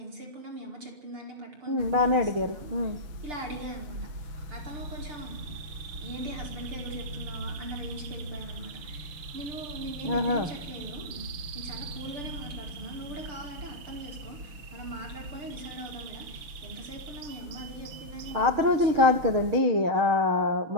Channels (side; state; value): left; late; 6.2 ms